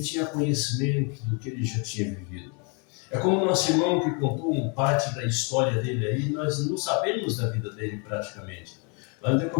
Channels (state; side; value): quieter; right; 34.9 dB